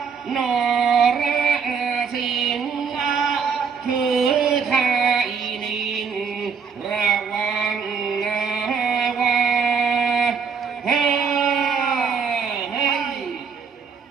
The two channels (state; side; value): quieter; left; 5.9 dB